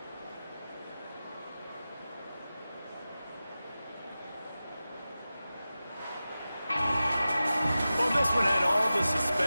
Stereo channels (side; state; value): both; inverted; correlation -0.94